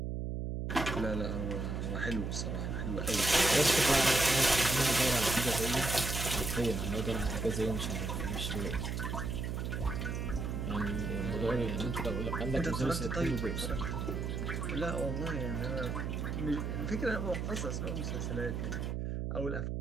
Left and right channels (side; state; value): right; noise; hum, 2 dB below the sound